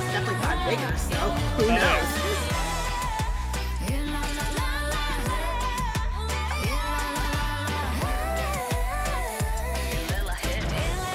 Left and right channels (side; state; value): both; identical; correlation 1.00